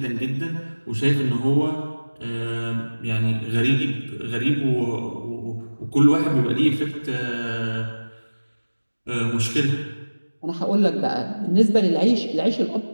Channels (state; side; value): inverted; both; correlation -1.00